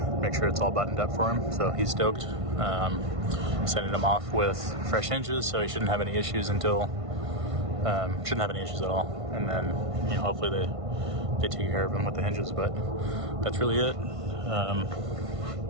make sure it's all buttoned up for him. So he's stoked. Sending him off with fresh hinges, so he shouldn't have any issues until shouldn't have any issues at all. And then hopefully they take care of him with the hinges. But that's really it.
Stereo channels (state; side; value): late; left; 1.5 ms